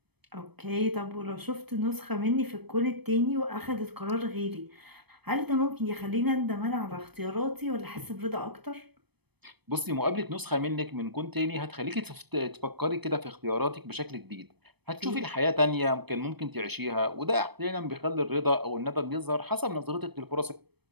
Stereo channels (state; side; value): late; left; 0.98 ms